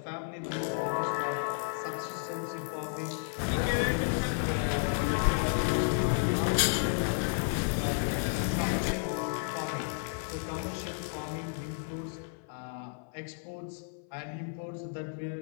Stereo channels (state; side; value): silent; right; 56 dB below the other